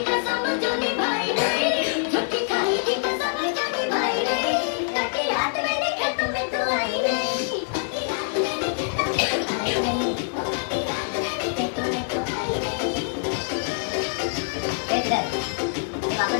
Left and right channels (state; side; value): silent; right; digital silence